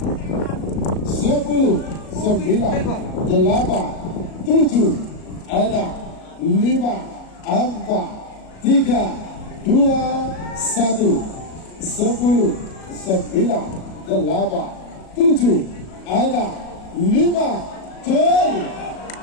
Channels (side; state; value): right; late; 37 ms